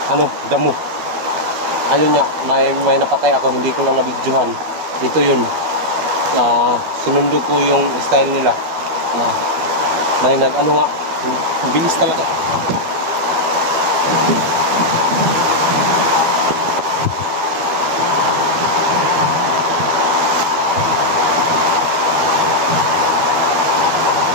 damo. Ayun nga, may napatay ako, hindi ko lang nabidyohan. Ito yun, sinundo ko yung style nila. May bilis talaga.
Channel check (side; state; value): left; late; 12 ms